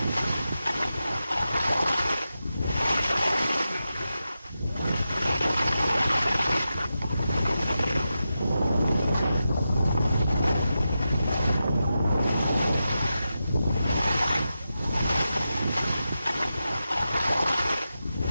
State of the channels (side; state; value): both; inverted; correlation -0.90